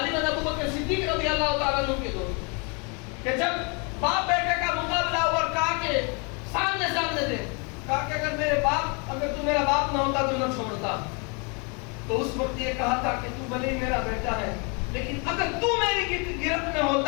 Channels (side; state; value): right; quieter; 33.4 dB